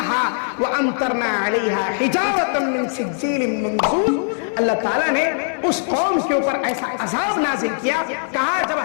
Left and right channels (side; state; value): right; silent; digital silence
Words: وامطرنا علیہا حجارۃ من سجیل منضود. اللہ تعالیٰ نے اس قوم کے اوپر ایسا عذاب نازل کیا. کہا جب